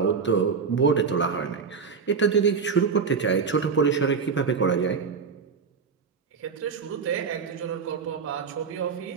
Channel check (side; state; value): left; quieter; 5.7 dB